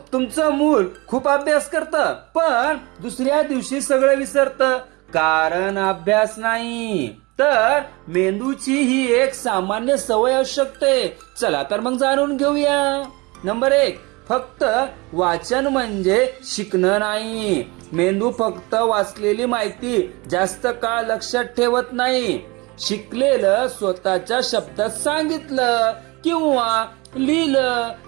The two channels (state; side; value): quieter; left; 25.0 dB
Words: तुमचं मूल खूप अभ्यास करतं पण दुसऱ्या दिवशी सगळं विसरतं कारण अभ्यास नाही. तर मेंदूची ही एक सामान्य सवय असू शकते. चला तर मग जाणून घेऊया. नंबर 1, फक्त वाचन म्हणजे शिकणं नाही. मेंदू फक्त वाचलेली माहिती जास्त काळ लक्षात ठेवत नाही. शिकलेलं स्वतःच्या शब्दात सांगितलं किंवा लिहिलं